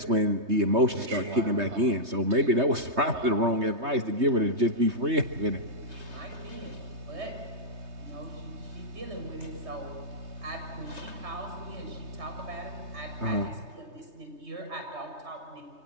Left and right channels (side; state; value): left; late; 3.2 ms